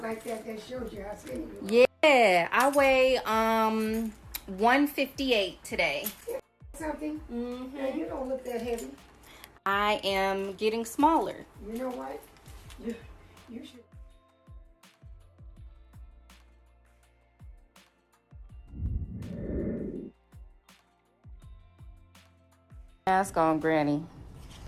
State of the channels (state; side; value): identical; both; correlation 1.00